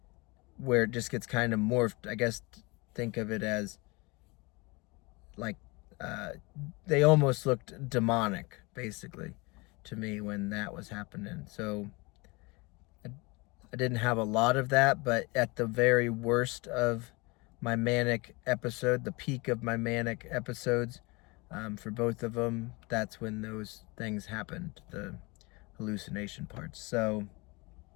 where it just gets kind of morphed. I guess think of it as like they almost looked demonic, basically, to me when that was happening. So I didn't have a lot of that, but at the very worst of my manic episode, the peak of my manic episodes, for both of them, that's when those things happened, the hallucination parts. So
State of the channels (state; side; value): quieter; right; 26.1 dB